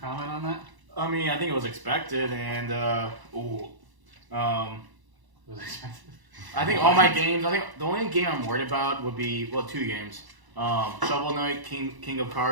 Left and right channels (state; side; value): late; left; 1.0 ms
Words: on that? I mean, I think it was expected, and Was expected. I think all my games. I think the only game I'm worried about would be two games. Shovel Knight, King of